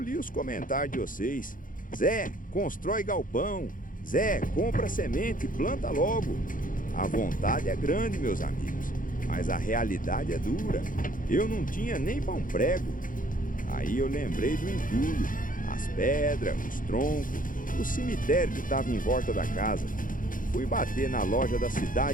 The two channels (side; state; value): right; late; 0.39 ms